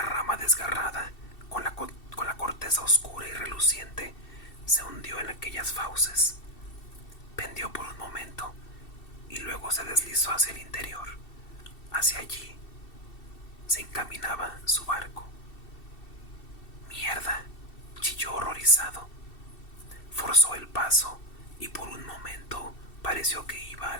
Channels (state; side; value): late; right; 2.7 ms